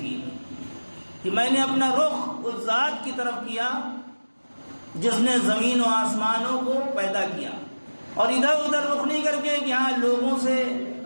کہ میں نے اپنا رخ اس ذات کی طرف کیا جس نے زمین و آسمانوں کو پیدا کیا، اور ادھر ادھر رخ نہیں کر کے کہ ہاں لوگوں سے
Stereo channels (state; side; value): inverted; both; correlation -1.00